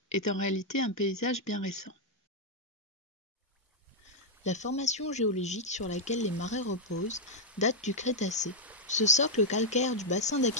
est en réalité un paysage bien récent. La formation géologique sur laquelle les marais reposent date du Crétacé. Ce socle calcaire du bassin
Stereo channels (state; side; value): normal; both; correlation -0.02